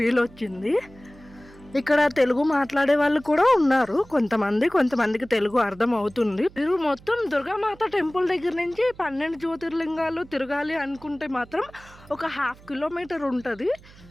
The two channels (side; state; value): right; noise; hum, 23 dB below the sound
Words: వచ్చింది. ఇక్కడ తెలుగు మాట్లాడే వాళ్ళు కూడా ఉన్నారు. కొంతమందికి తెలుగు అర్థం అవుతుంది. మీరు మొత్తం దుర్గామాత టెంపుల్ దగ్గర నుంచి 12 జ్యోతిర్లింగాలు తిరగాలి అనుకుంటే మాత్రం ఒక 1/2 కిలోమీటర్ ఉంటుంది.